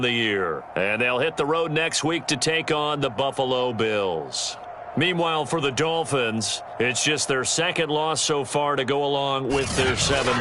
the year. And they'll hit the road next week to take on the Buffalo Bills. Meanwhile, for the Dolphins, it's just their second loss so far to go along with their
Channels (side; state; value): both; identical; correlation 1.00